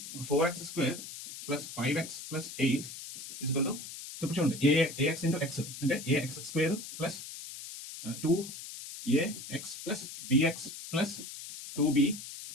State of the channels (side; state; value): left; noise; hiss, 11 dB below the sound